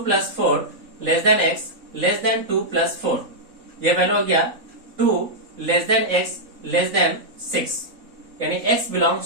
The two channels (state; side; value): late; left; 3.9 ms